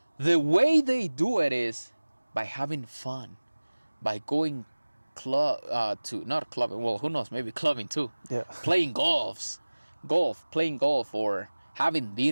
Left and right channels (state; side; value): inverted; both; correlation -1.00